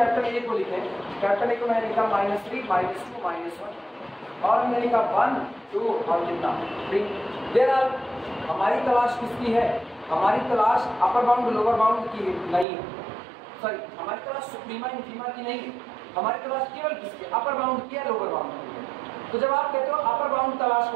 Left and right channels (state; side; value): drops out; left; at 12.7 s